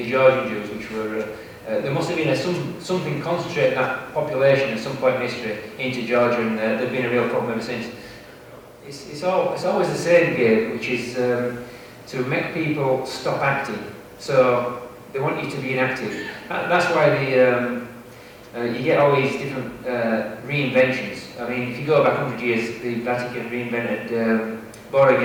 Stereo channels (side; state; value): both; identical; correlation 1.00